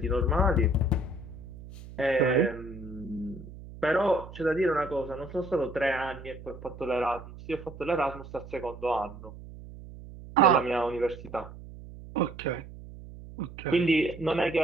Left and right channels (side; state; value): right; noise; hum, 15 dB below the sound